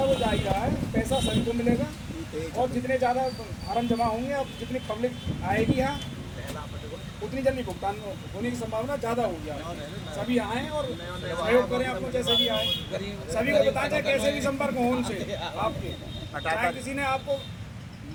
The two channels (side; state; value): both; identical; correlation 1.00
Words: जा ही रहा है, पैसा सभी को मिलेगा, और जितने ज़्यादा फार्म जमा होंगे, अब जितनी पब्लिक आएगी यहाँ उतनी जल्दी भुगतान होने की संभावना ज़्यादा होगी। सभी आएँ और सहयोग करें, आपको जैसे भी आए सभी को बताएं, चाहे कैसे भी संपर्क हो उनसे आपके, चाहे किसी ने आपको